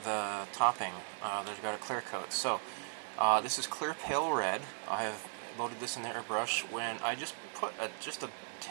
the topping. There's got a clear coat. So this is clear pale red. I have loaded this in the airbrush when I just put just a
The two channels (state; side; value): silent; left; digital silence